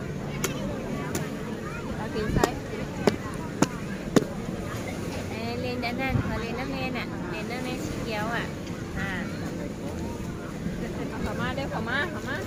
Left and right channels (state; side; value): identical; both; correlation 1.00